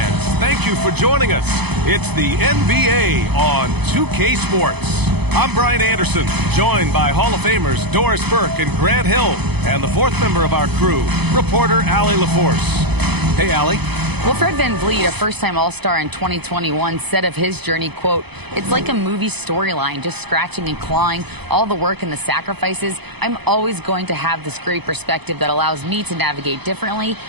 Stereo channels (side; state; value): left; late; 0.98 ms